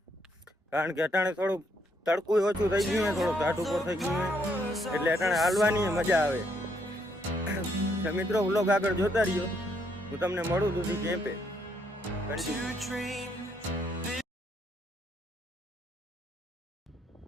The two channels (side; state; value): both; normal; correlation 0.72